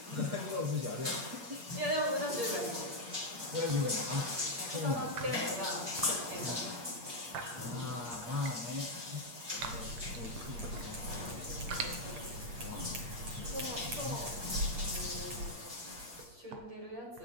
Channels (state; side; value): late; left; 8.5 ms